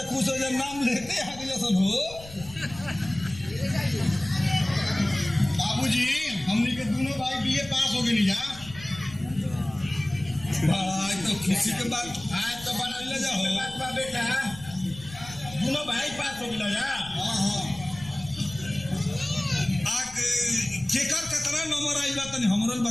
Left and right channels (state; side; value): noise; left; rumble, 17 dB below the sound